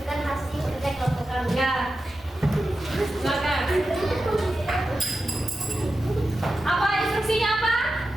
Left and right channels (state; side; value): normal; both; correlation 0.91